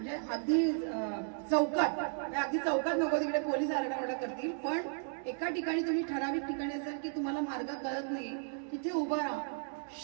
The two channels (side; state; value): left; silent; 55 dB below the other